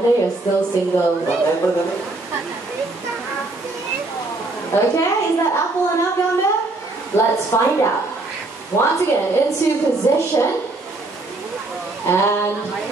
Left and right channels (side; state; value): left; quieter; 3.1 dB